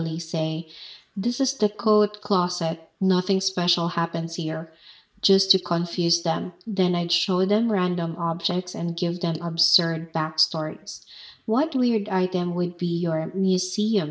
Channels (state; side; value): identical; both; correlation 1.00